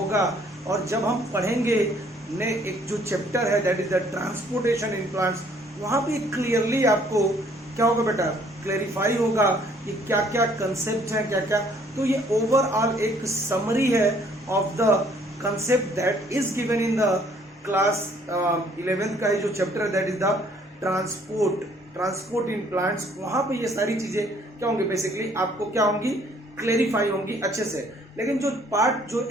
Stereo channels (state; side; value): normal; both; correlation 0.61